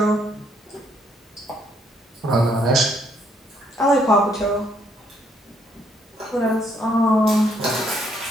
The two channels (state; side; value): normal; both; correlation 0.70